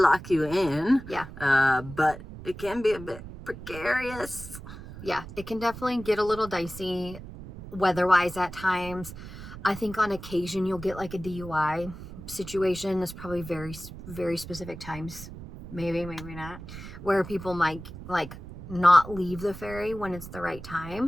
you in. Yeah. But it can be a bit precarious. Yeah, it can definitely get a little dicey weather-wise at times. I think on occasion you'll get a DUI situation. There's probably very, very specific times, maybe not, where people might not leave the ferry when it's the right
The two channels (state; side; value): noise; right; rumble, 13 dB below the sound